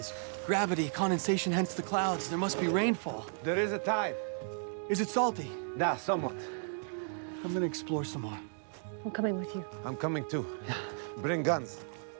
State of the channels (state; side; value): silent; left; digital silence